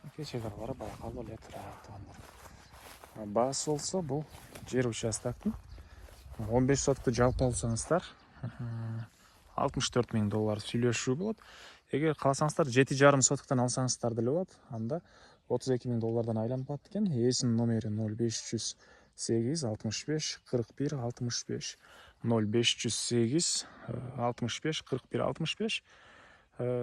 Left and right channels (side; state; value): both; identical; correlation 1.00